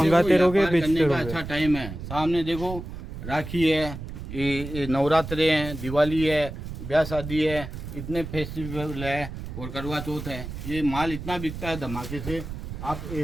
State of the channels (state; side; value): noise; right; rumble, 9 dB below the sound